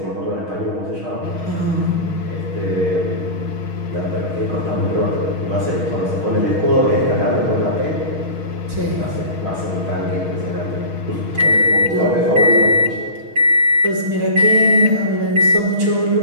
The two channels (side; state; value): left; late; 6.4 ms